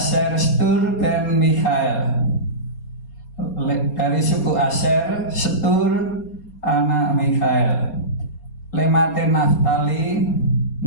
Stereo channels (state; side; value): late; right; 4.3 ms